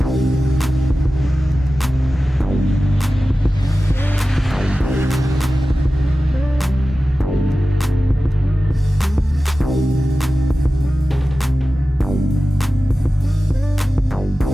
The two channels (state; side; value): normal; both; correlation 0.95